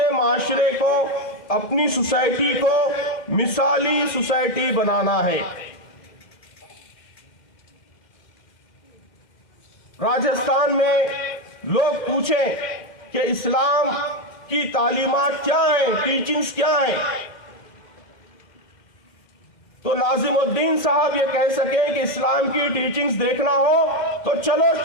معاشرے کو، اپنی سوسائٹی کو مثالی سوسائٹی بنانا ہے. راجستھان میں لوگ پوچھیں کہ اسلام کی تعلیمات کیا ہیں، ٹیچنگز کیا ہیں، تو ناظم الدین صاحب یہ کہہ سکیں کہ اسلام کی ٹیچنگز دیکھنا ہو تو چلو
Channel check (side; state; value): right; late; 2.1 ms